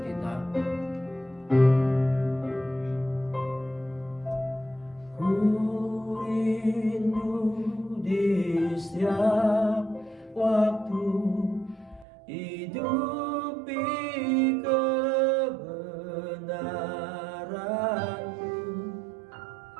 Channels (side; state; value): left; drops out; at 12.1 s